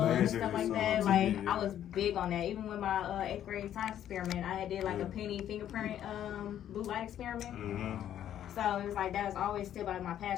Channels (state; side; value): quieter; right; 10.8 dB